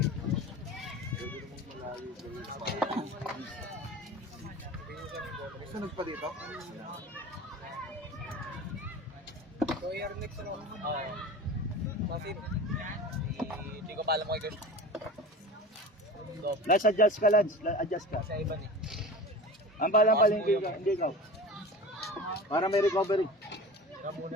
Gusto nagpalito? So, year next ano? Oo. Masin. Hindi ko pa alam kay Gus. Let's adjust ka, Lance. Adjust ka. Sa iba eh. Ang balang palengke ka, hindi ikaw. Para may recovery. Tira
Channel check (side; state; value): both; normal; correlation 0.34